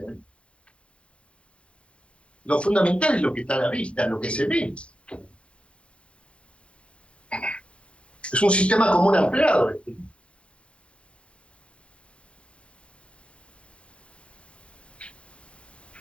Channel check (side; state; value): right; late; 0.059 ms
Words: ¿eh? Lo fundamental es lo que está a la vista, lo que se ve. Es un sistema común ampliado.